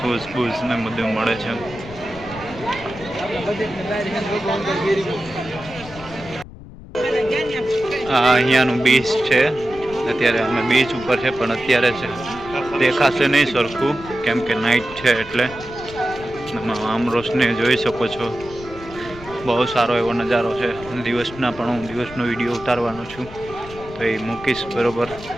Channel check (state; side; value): noise; left; rumble, 16 dB below the sound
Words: બૂઝ ને બધું મળે છે. આ અહીંયાનું બીચ છે. અત્યારે અમે બીચ ઉપર છે, પણ અત્યારે છે દેખાશે નહીં સરખું, કેમ કે નાઇટ છે એટલે. આમ રોશની જોઈ શકો છો. બહુ સારો એવો નજારો છે. દિવસના પણ હું દિવસનો વિડીયો ઉતારવાનો છું, તો એ મૂકીશ બરાબર.